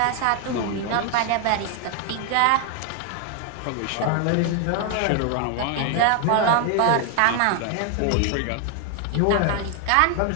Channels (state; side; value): different; both; correlation 0.00